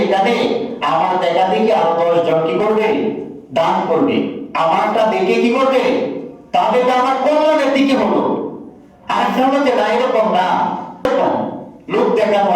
এখানে আমার দেখা দেখে আরো 10 জন কি করবে? দান করবে, আমারটা দেখে কি করবে? তাহলে তো আমার কল্যাণের দিকে হলো। আর একটা হলো যে না, এরকম না, লোক দেখানো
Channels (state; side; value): identical; both; correlation 1.00